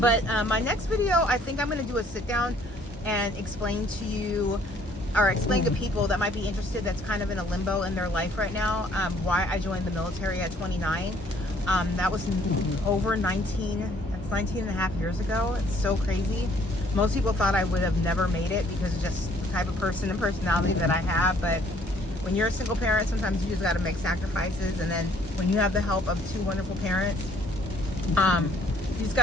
my next video, I think I'm going to do a sit down and explain to you, or explain to people that might be interested, that's kind of in a limbo in their life right now, why I joined the military at 29. That was over 19 and a half years ago. It's so crazy. Most people thought I would have never made it because of just the type of person and personality that I have. But when you're a single parent, sometimes you just got to make sacrifices. And then when you have the help of 2 wonderful parents, you just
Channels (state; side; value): normal; both; correlation 0.61